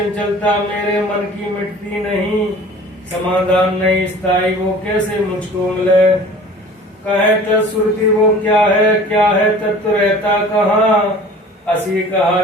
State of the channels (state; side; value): normal; both; correlation 0.44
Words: मेरे मन की मिटती नहीं, समाधान नहीं स्थायी वो कैसे मुझको मिले। कहे तत्श्रुति वो क्या है तत्व रहता कहाँ। असी कहा